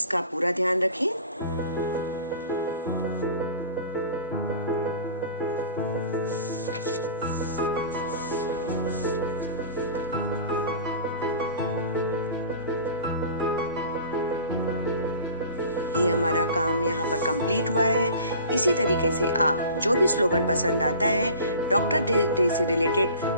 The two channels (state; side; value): inverted; both; correlation -0.42